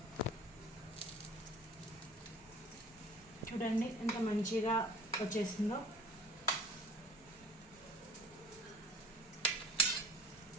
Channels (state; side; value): normal; both; correlation 0.43